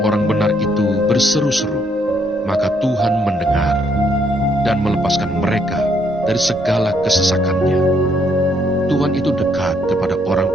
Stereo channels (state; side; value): normal; both; correlation 0.71